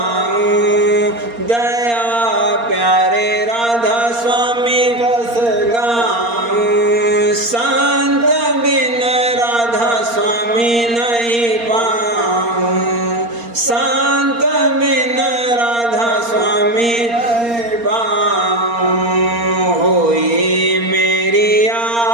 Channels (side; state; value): left; late; 4.3 ms